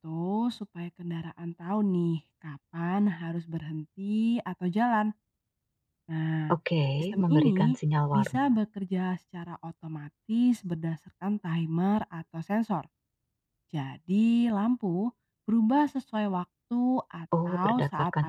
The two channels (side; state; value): both; identical; correlation 1.00